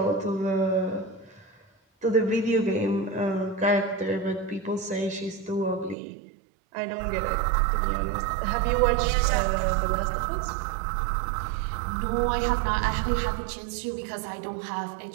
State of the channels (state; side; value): drops out; left; at 6.0 s